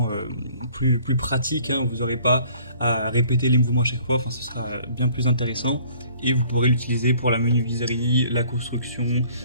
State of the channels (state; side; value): inverted; both; correlation -0.55